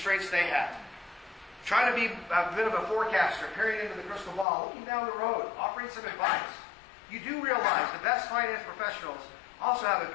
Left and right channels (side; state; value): right; drops out; at 4.5 s